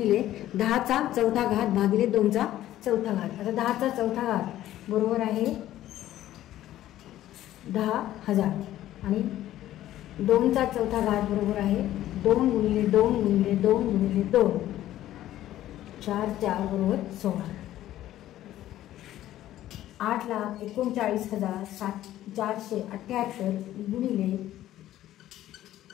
10चा चौथा घात भागिले 2चा चौथा घात. आता 10चा चौथा घात बरोबर आहे 10,000 आणि 2चा चौथा घात बरोबर आहे 2 गुणिले 2 गुणिले 2 गुणिले 2, 4 4 बरोबर 16. 8,39,478 गुणिले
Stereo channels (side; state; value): right; quieter; 13.5 dB